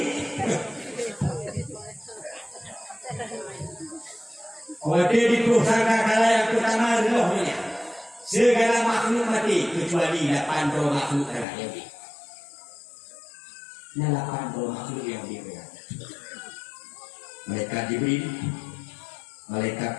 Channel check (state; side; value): drops out; right; at 11.5 s